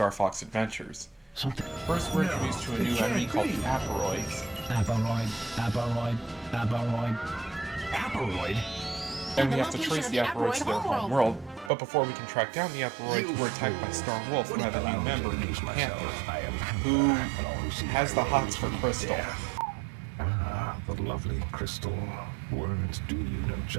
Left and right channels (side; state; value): left; drops out; at 11.7 s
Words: Fox Adventures. Something. First, we're introduced to a new enemy called the Aporoids. Aporoid? And we have to trace the Aporoids to their home world, but before we can track down the Aporoids, we're attacked by Star Wolf, who have a new member named Panther, who has the hots for Crystal. Ah, the lovely Crystal. Words do you no